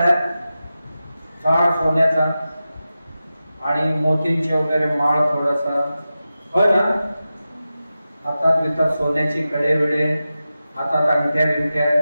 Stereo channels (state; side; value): inverted; both; correlation -0.93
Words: काळ सोन्याचा आणि मोतींचे वगैरे माळ थोडासा, होय ना? हातात बितात सोन्याची कडे बिडे, हातात अंगठ्या बिंगठ्या,